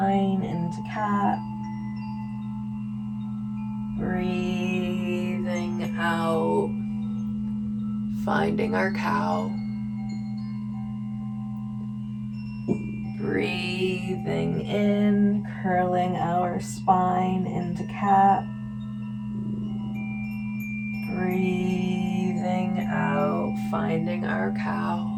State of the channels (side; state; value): both; identical; correlation 1.00